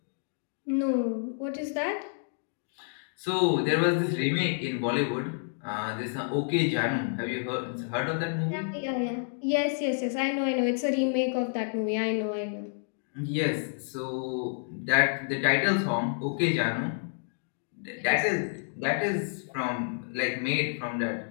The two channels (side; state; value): right; silent; digital silence